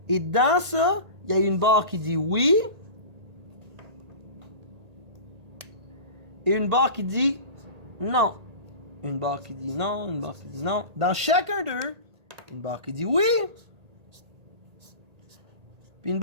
Et dans ça, il y a une barre qui dit oui et une barre qui dit non. Une barre qui dit non, une barre qui dit non. Dans chacun d'eux, une barre qui dit oui, puis une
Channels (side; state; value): left; late; 1.8 ms